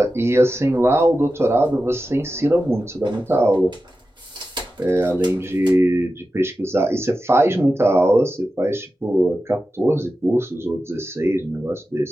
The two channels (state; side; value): normal; both; correlation 0.93